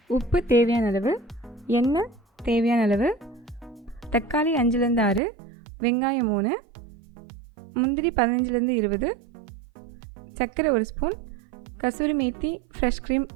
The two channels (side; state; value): left; drops out; at 5.2 s